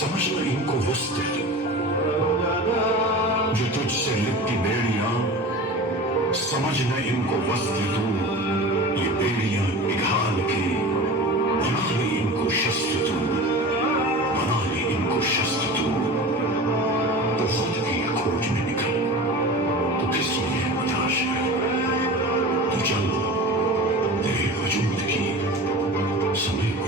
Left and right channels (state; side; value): normal; both; correlation 0.34